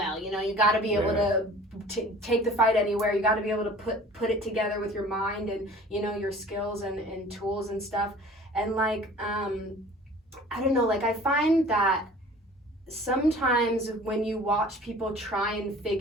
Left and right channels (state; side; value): normal; both; correlation 0.46